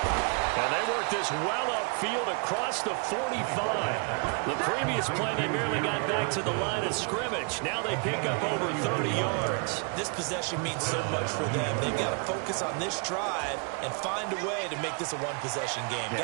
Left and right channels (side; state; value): left; quieter; 36.3 dB